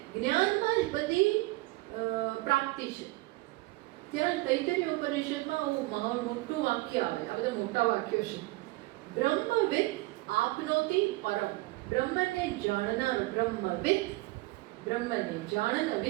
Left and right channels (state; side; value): quieter; left; 21.3 dB